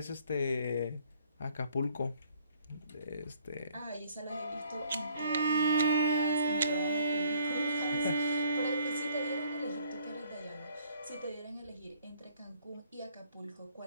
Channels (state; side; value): inverted; both; correlation -0.61